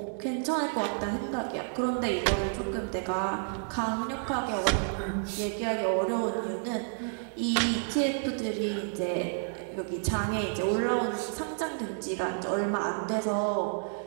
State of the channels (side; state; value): left; silent; digital silence